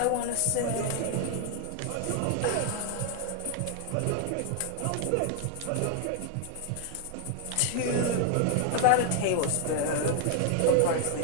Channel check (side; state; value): both; different; correlation 0.00